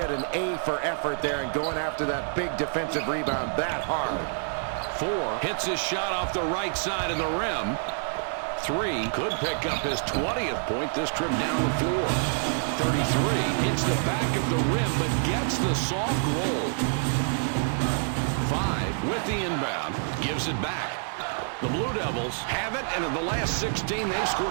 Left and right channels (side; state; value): left; silent; digital silence